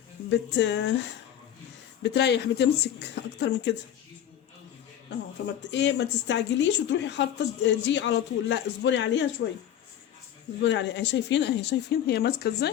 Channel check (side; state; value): right; quieter; 10.4 dB